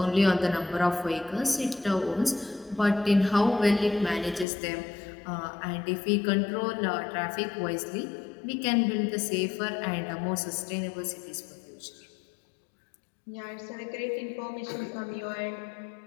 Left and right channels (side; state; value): right; drops out; at 4.5 s